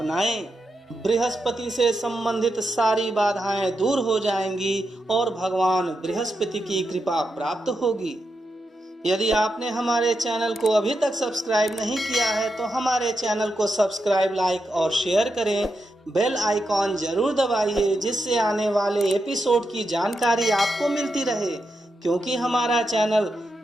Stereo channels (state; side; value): normal; both; correlation 0.86